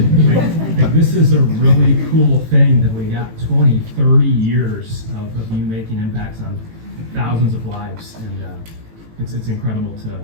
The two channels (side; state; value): left; late; 18 ms